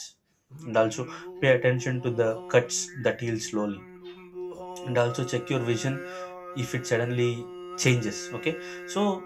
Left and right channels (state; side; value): identical; both; correlation 1.00